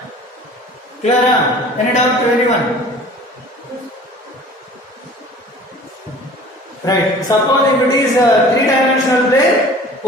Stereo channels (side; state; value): both; normal; correlation 0.46